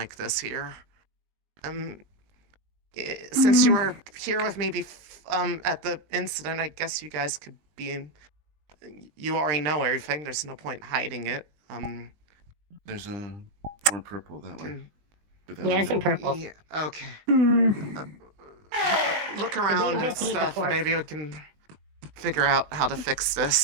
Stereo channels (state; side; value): late; left; 20 ms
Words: this here. Since you were here with me at the incident, I guess you guys could be in... You already know everything. There's no point hiding it. There's a more purple that way. Yeah, it's in purple. Yeah, okay. Look around and stuff. Maybe we can figure out how to fix